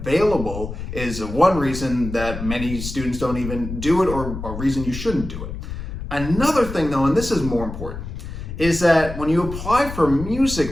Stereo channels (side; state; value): left; noise; rumble, 8 dB below the sound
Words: is one reason that many students don't even do it, or a reason you shouldn't do it. Another thing though, and this is more important, is that when you apply for